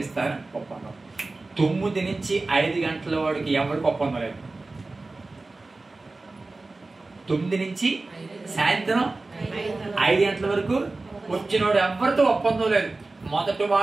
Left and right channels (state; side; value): quieter; left; 3.3 dB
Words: ఇస్తారు, ఒప్పందం. 9 నుంచి 5 గంటల వాడికి ఎవరికి ఒప్పందం లేదు. 9 నుంచి సాయంత్రం 5 గంటల వరకు వచ్చినవాడు ఎవరితో ఒప్పందం లేదు. మొదటి